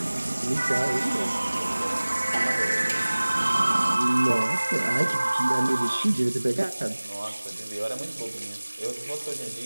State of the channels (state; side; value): inverted; both; correlation -1.00